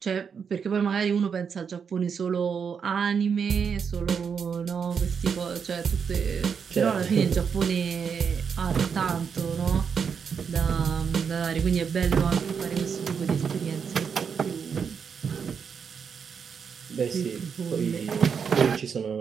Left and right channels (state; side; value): quieter; left; 6.5 dB